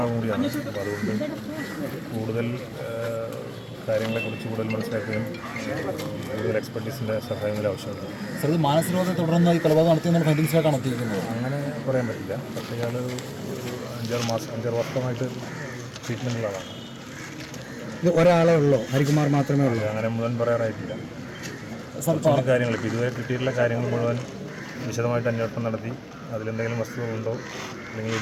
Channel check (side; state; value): both; identical; correlation 1.00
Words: കൂടിയാണ്. അപ്പോൾ അതുകൊണ്ട് കൂടുതൽ കാര്യങ്ങളെക്കുറിച്ച് കൂടുതൽ മനസ്സിലാക്കുകയും കൂടുതൽ എക്സ്പെർട്ടീസിൻ്റെ സഹായങ്ങൾ ആവശ്യമുണ്ട്. സാർ, ഇത് മാനസികരോധം തുടർന്ന് ഈ കൊലപാതകം നടത്തിയെന്നുള്ള ഫൈൻഡിങ്സിലേക്കാണ് എത്തിയിരിക്കുന്നത്. അങ്ങനെ പറയാൻ പറ്റില്ല. പക്ഷേ ഇയാൾ 5-6 വർഷമായിട്ട് ട്രീറ്റ്മെൻറ്റിലാണ്. ഇത് ഒരാളെ ഉള്ളൂ, ഹരികുമാർ മാത്രമേ ഉള്ളൂ? അങ്ങനെ മുഴുവൻ പറയാറായിട്ടില്ല. കാര്യങ്ങൾ ഇപ്പോൾ ഇതുവരെ കിട്ടിയിട്ടുള്ള കാര്യങ്ങൾ മുഴുവൻ വിശദമായിട്ട് അന്വേഷണം നടത്തി അതിലെന്തെങ്കിലും വസ്തുതകളുണ്ടോ അല്ലെങ്കിൽ ഈ